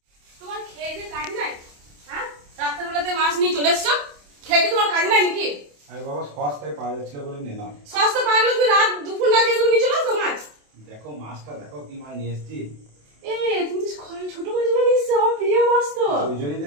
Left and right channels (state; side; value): late; left; 27 ms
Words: তোমার খেয়ে কাজ নাই? হ্যাঁ, রাত্রেবেলাতে মাছ নিয়ে চলে এসছো, খেয়ে তোমার কাজ নাই নাকি? আরে বাবা, সস্তায় পাওয়া যাচ্ছিল বলে নিলাম। সস্তা পাওয়া গেলে তুমি রাত দুপুর না খেয়ে তুমি নিয়ে চলে আসো মাছ। দেখো মাছটা, দেখো কি মাছ নিয়ে এসছি। তুমি তো ছোট মাছগুলো নিয়ে এসছো, আমার প্রিয় মাছ তো। ওই জন্যই